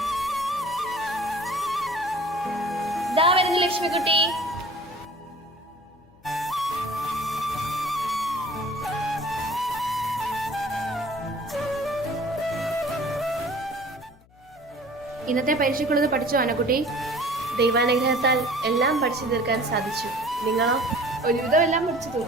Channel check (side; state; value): left; noise; hum, 28 dB below the sound